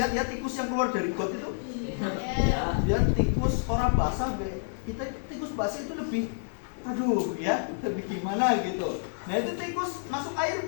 ya tikus yang keluar dari got itu? Ya, dia tikus orang basah, kita tikus basah itu lebih, aduh ya, lebih gimana gitu. Nah itu tikus masuk air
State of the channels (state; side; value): silent; right; digital silence